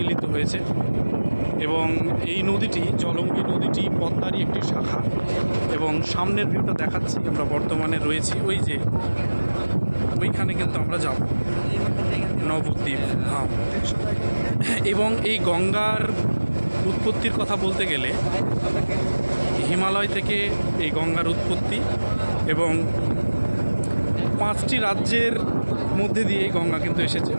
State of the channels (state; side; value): inverted; both; correlation -1.00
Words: হয়েছে। এবং এই নদীটি, জলঙ্গি নদীটি পদ্মারই একটি শাখা। এবং সামনের ভিউটা দেখাচ্ছি, আমরা বর্তমানে রয়েছি ওই যে ওইখানে, কিন্তু আমরা যাব নবদ্বীপ ধাম। এবং এই গঙ্গার উৎপত্তির কথা বলতে গেলে হিমালয় থেকে এই গঙ্গার উৎপত্তি, এবং 5টি রাজ্যের মধ্যে দিয়ে এই গঙ্গা কিন্তু এসেছে।